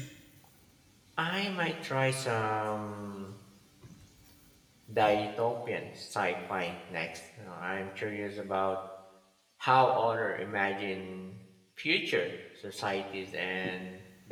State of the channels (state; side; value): identical; both; correlation 1.00